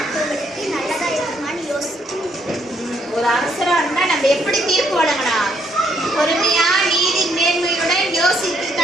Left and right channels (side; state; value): both; normal; correlation 0.71